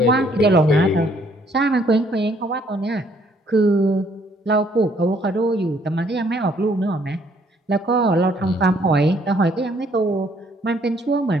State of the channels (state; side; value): normal; both; correlation 0.65